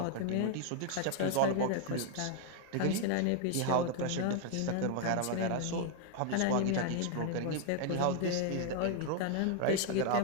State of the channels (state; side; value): different; both; correlation 0.00